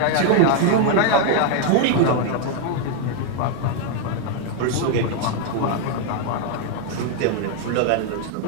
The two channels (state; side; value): different; both; correlation 0.00